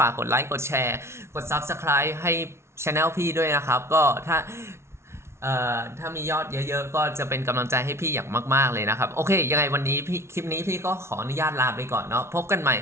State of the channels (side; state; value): left; late; 0.13 ms